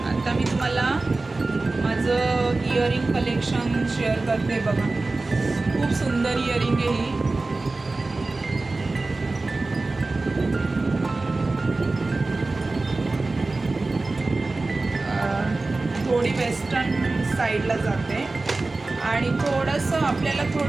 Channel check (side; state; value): left; quieter; 3.4 dB